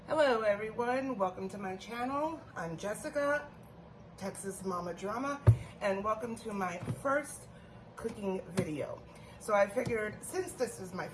Hello everyone, welcome to my channel. I'm Jessica, Texas Mama Drama, and welcome to my first cooking video. So I figured since this is my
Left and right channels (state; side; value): identical; both; correlation 1.00